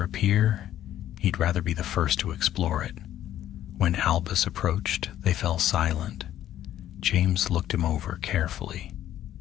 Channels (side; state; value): right; quieter; 12.0 dB